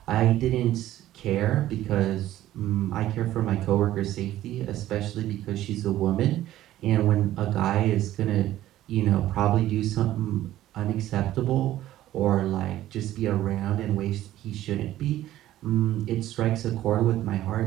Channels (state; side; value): quieter; left; 13.9 dB